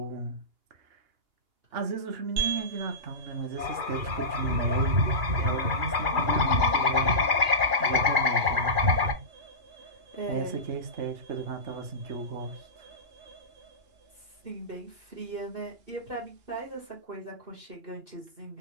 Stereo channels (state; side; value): late; left; 2.9 ms